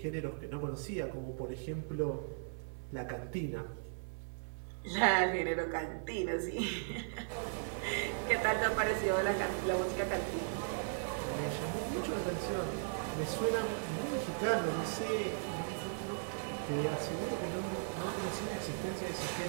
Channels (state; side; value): silent; left; 53 dB below the other